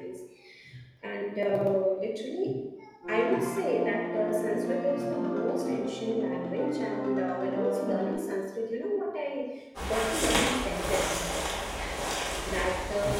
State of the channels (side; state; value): both; identical; correlation 1.00